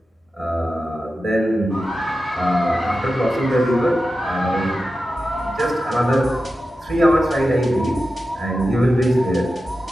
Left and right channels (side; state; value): both; normal; correlation 0.92